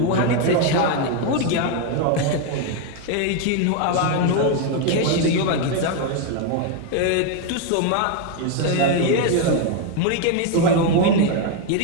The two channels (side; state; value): both; different; correlation 0.01